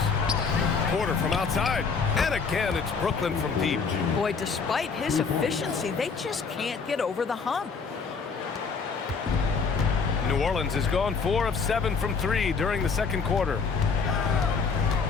Porter from outside. And again, it's Brooklyn from deep. Boy, despite his efficiency, they just can't get over the hump. New Orleans has gone 4 of 7 from 3 during the second quarter.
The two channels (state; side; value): quieter; right; 5.2 dB